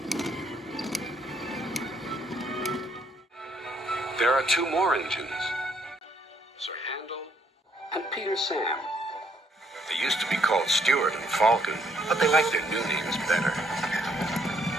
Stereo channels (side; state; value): both; normal; correlation 0.69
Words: There are two more engines, Sir Handel and Peter Sam. They used to be called Stuart and Falcon, but they like their new names better.